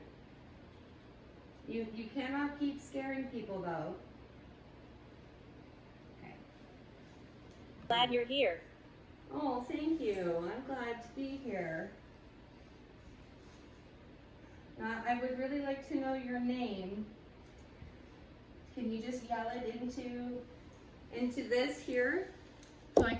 You cannot keep scaring people though. Okay. Glad you're here. Oh, thank you. I'm glad to be here. I would really like to know your name. Can you just yell it into this here? So I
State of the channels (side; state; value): both; identical; correlation 1.00